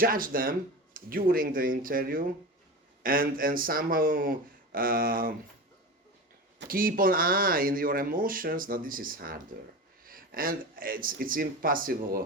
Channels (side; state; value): both; normal; correlation 0.27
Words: them during the interview, and somehow keep an eye in your emotions. Now this is harder, and it's